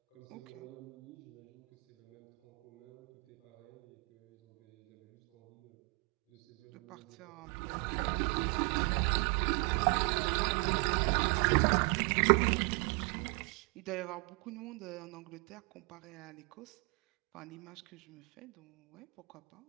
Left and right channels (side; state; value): left; quieter; 33.2 dB